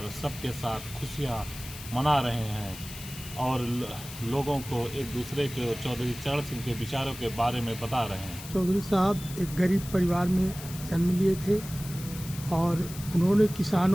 सबके साथ खुशियाँ मना रहे हैं और लोगों को एक दूसरे के चौधरी चरण सिंह के विचारों के बारे में बता रहे हैं। चौधरी साहब एक गरीब परिवार में जन्म लिए थे और उन्होंने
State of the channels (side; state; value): left; noise; hiss, 13 dB below the sound